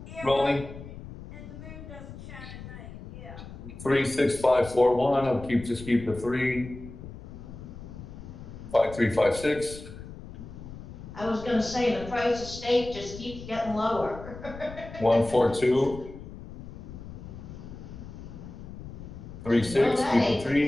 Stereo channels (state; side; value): noise; left; rumble, 13 dB below the sound